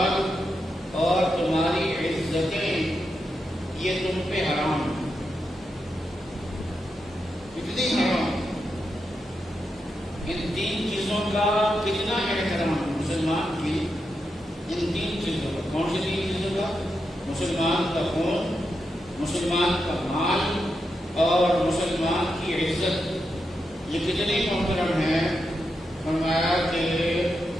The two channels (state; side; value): normal; both; correlation 0.86